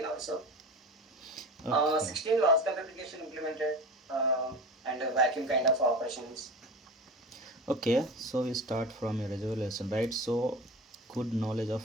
also. Okay. 16 logical replication implemented and vacuum kind of operations. Okay, so we start from your resolution, right? So, good knowledge of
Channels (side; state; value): both; normal; correlation 0.31